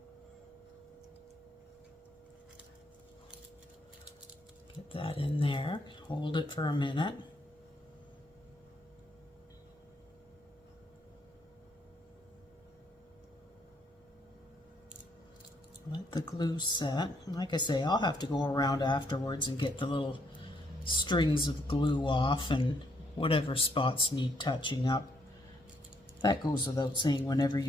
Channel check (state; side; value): normal; both; correlation 0.72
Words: Get that in there, hold it for a minute. Let the glue set. Like I say, I'll have to go around afterwards and get the little strings of glue off and whatever spots need touching up. That goes without saying, whenever